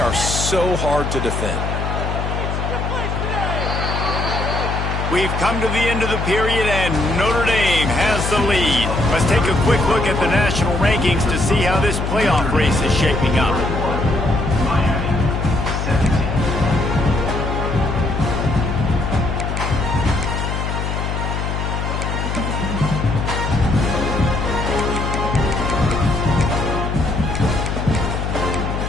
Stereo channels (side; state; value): left; noise; hum, 2 dB below the sound